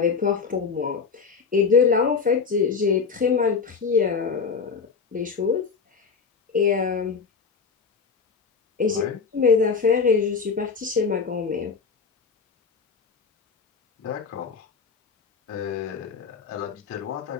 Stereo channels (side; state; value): right; quieter; 5.5 dB